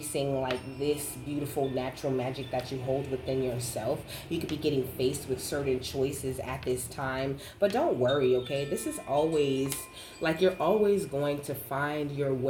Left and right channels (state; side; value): identical; both; correlation 1.00